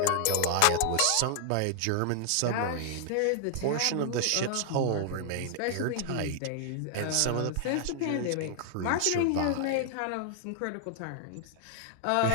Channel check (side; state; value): both; different; correlation -0.01